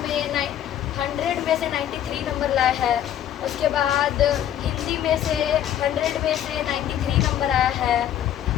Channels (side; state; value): right; quieter; 10.9 dB